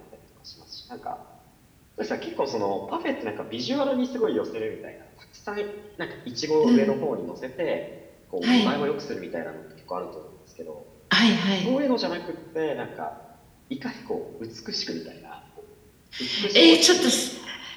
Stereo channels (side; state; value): both; identical; correlation 1.00